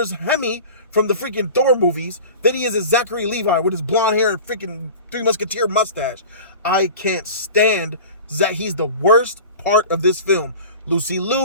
Hemi from the freaking Thor movies than he is as Zachary Levi with his blonde hair and freaking Three Musketeer mustache. I can't stand that. He's the worst part of this film. Lucy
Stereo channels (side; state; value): both; inverted; correlation -0.37